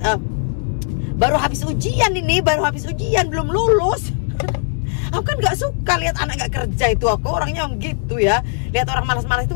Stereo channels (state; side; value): silent; right; 63 dB below the other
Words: baru habis ujian belum lulus. Aku kan nggak suka lihat anak nggak kerja itu, aku orangnya gitu ya, lihat orang malas-malas itu